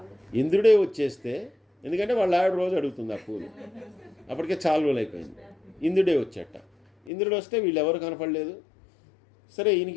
ఇంద్రుడే వచ్చేస్తే, ఎందుకంటే వాళ్ళ ఆవిడ రోజు అడుగుతుంది ఆ పూలు, అప్పటికే చాలా రోజులు అయిపోయింది. ఇంద్రుడే వచ్చేట. ఇంద్రుడు వస్తే వీళ్ళు ఎవరు కనపడలేదు. సరే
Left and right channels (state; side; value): drops out; right; at 7.1 s